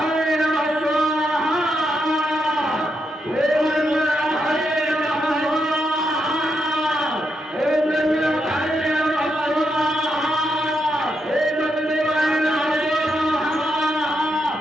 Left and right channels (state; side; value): normal; both; correlation 0.82